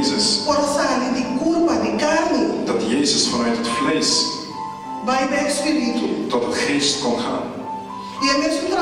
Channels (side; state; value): both; identical; correlation 1.00